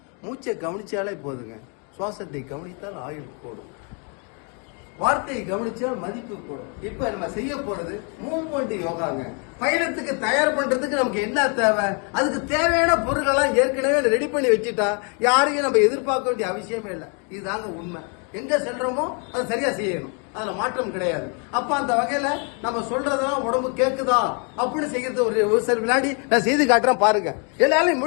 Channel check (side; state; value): right; quieter; 37.0 dB